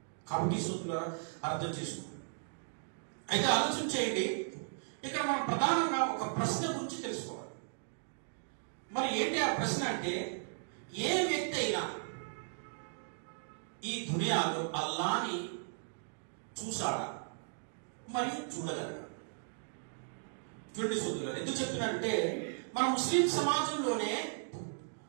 కాబట్టి సోదరులారా అర్థం చేసుకోండి. అయితే ఆలోచన చేయండి, ఇక్కడ మనం ప్రధానంగా ఒక ప్రశ్న గురించి తెలుసుకోవాలి. మరి ఏంటి ఆ ప్రశ్న అంటే, ఏ వ్యక్తి అయినా ఈ దునియాలో అల్లాని చూశాడా మరియు చూడగలరా? చూడండి సోదరులారా, ఎందుకు చెప్తున్నానంటే, మన ముస్లిం సమాజంలోనే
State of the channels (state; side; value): silent; left; digital silence